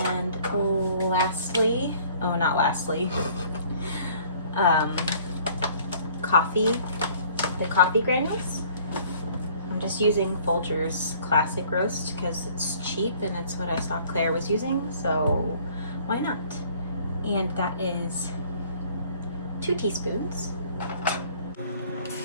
lastly, the coffee granules. I'm just using Folgers Classic Roast because it's cheap and it's what I saw Claire was using, so why not? And that is 2 teaspoons.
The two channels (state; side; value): inverted; both; correlation -0.55